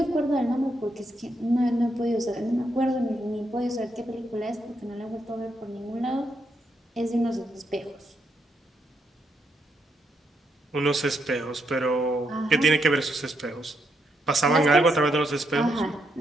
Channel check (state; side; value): normal; both; correlation 0.79